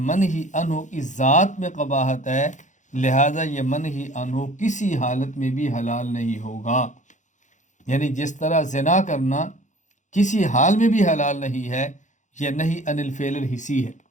منہی عنہ کی ذات میں قباحت ہے، لہذا یہ منہی عنہ کسی حالت میں بھی حلال نہیں ہوگا. یعنی جس طرح زنا کرنا کسی حال میں بھی حلال نہیں ہے، یہ نہی عن الفعل الحسی ہے.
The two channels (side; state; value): right; late; 0.36 ms